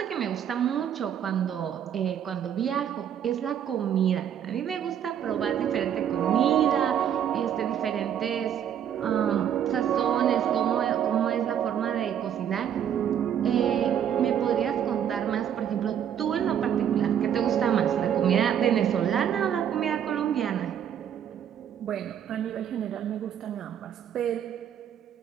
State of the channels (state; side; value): quieter; left; 9.2 dB